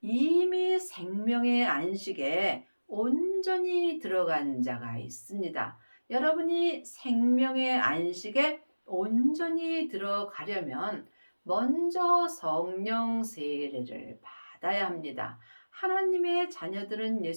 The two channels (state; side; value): inverted; both; correlation -1.00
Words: 이미 생명의 안식에 온전히 들어간 자가 있습니다. 여러분이 생명의 안식에 온전히 들어가려면 먼저 성령 세례를 받아야 합니다. 하나님의 자녀들은